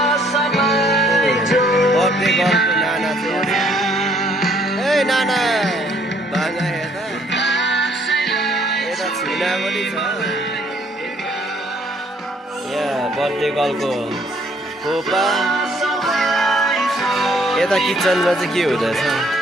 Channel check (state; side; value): normal; both; correlation 0.64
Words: बर्थडे गर्लको नाना चाहिँ ए नाना बाङ्गा हेर्दा यता छुना पनि छ। यहाँ बर्थडे गर्लको खोपा। यता किचनमा चाहिँ के हुँदैछ?